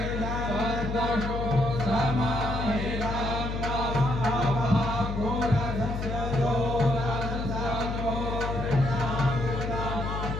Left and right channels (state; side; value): noise; left; hum, 3 dB below the sound